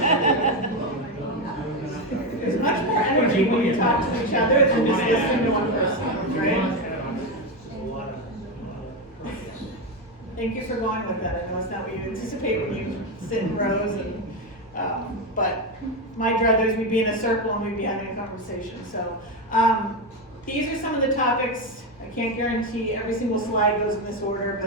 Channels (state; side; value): normal; both; correlation 0.11